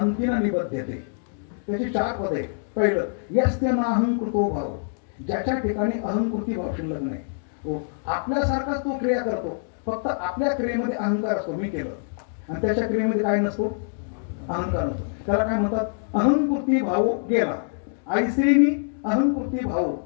न निबध्यते. त्याची 4 पदे. पहिलं, यस्य नाहंकृतो भाव, ज्याच्या ठिकाणी अहंकृती भाव शिल्लक नाही. हो, आपल्यासारखाच तो क्रिया करतो, फक्त आपल्या क्रियेमध्ये अहंकार असतो, मी केलं, आणि त्याच्या क्रियेमध्ये काय नसतो, अहंकार नसतो. त्याला काय म्हणतात, अहंकृती भाव गेला. आईश्रीनी अहंकृती भाव,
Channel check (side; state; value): right; silent; digital silence